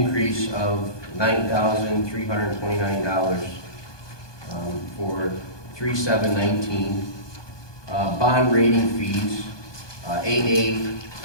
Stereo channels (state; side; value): late; right; 1.2 ms